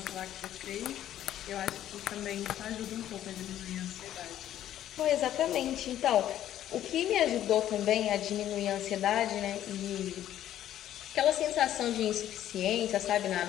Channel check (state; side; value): quieter; right; 11.9 dB